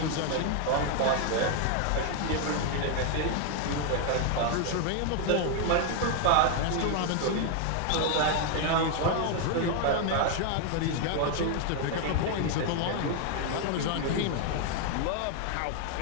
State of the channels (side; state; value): both; different; correlation 0.00